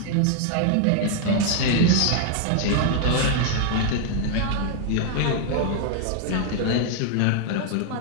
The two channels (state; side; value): different; both; correlation 0.00